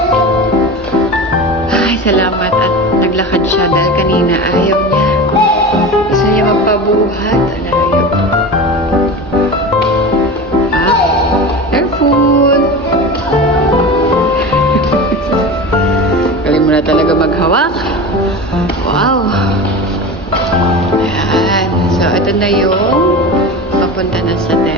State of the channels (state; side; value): normal; both; correlation 0.29